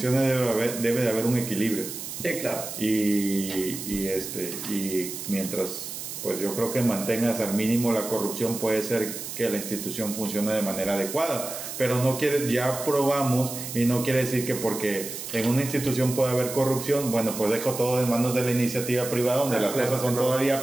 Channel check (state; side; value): noise; right; hiss, 8 dB below the sound